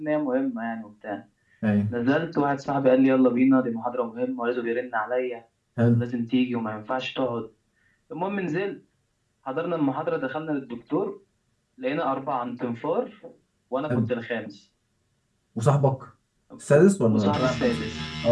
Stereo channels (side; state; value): both; identical; correlation 1.00